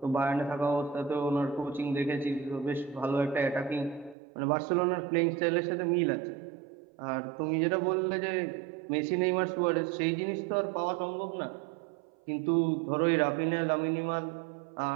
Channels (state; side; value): drops out; left; at 4.2 s